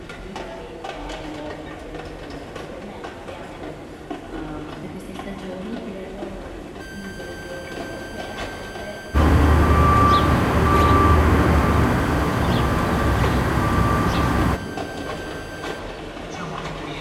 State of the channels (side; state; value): both; identical; correlation 1.00